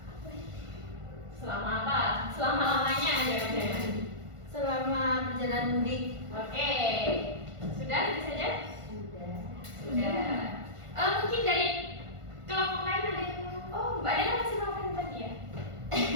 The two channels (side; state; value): left; late; 1.5 ms